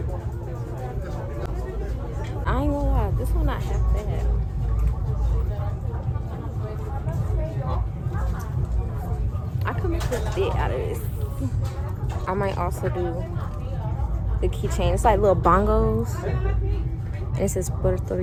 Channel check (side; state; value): both; identical; correlation 1.00